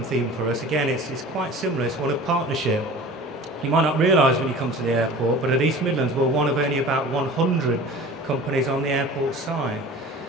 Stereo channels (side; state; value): both; normal; correlation 0.40